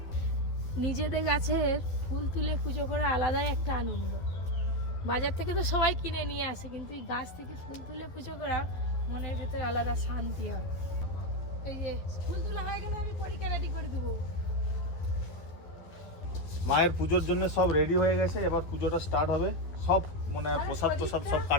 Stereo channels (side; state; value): right; late; 12 ms